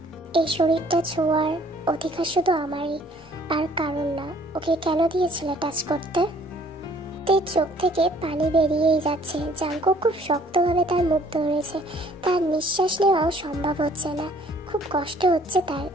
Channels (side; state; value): both; normal; correlation 0.58